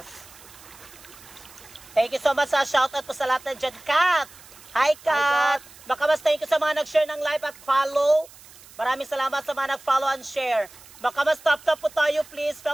Thank you so much sa shoutout po sa lahat ng dyan. Kat. Hi, Kat. Baka mas thank you sa mga nag-share ng live at follow. Maraming salamat sa mga nag-follow and share. Baka mas tap-tap po tayo, please,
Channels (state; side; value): noise; right; hiss, 21 dB below the sound